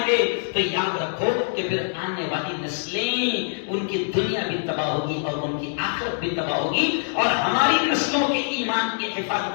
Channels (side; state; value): right; silent; digital silence